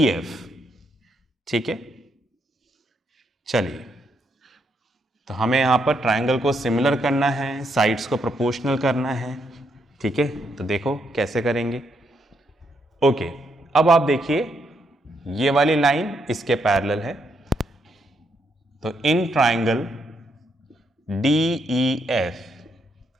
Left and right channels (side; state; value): both; normal; correlation 0.77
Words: ठीक है, चलिए, तो हमें यहां पर ट्रायंगल को सिमिलर करना है, साइड्स को प्रोपोर्शनल करना है। ठीक है, तो देखो कैसे करेंगे। ओके, अब आप देखिए ये वाली लाइन इसके पैरेलल है। तो इन ट्रायंगल DEF,